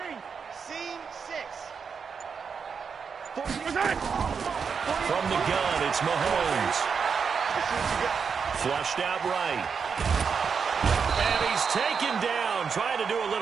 Seam 6. From the gun, it's Mahomes. Flushed out right. And he's taken down, trying to do a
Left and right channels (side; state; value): left; quieter; 6.1 dB